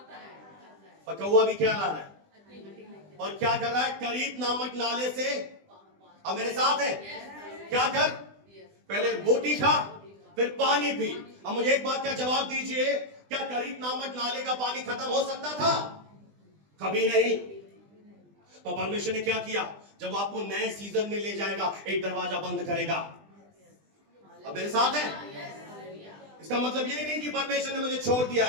पर कौवा भी क्या ला रहा है, और क्या कर रहा है, करीत नामक नाले से, अब मेरे साथ है, क्या कर, पहले रोटी खा फिर पानी पी। अब मुझे एक बात का जवाब दीजिए, क्या करीत नामक नाले का पानी खत्म हो सकता था? कभी नहीं। तो परमेश्वर ने क्या किया, जब आपको नए सीजन में ले जाएगा, एक दरवाजा बंद करेगा। अब मेरे साथ है? इसका मतलब ये नहीं कि परमेश्वर ने मुझे छोड़ दिया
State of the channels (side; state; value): left; late; 20 ms